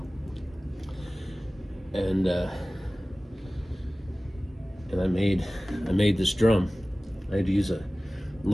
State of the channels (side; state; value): both; normal; correlation 0.97